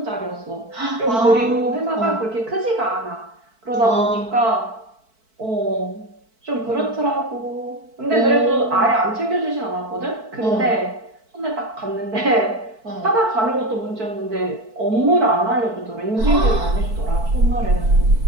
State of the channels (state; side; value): late; left; 4.5 ms